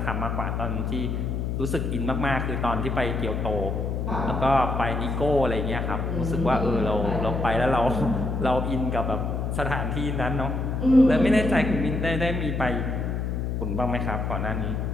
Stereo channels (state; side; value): noise; left; hum, 1 dB below the sound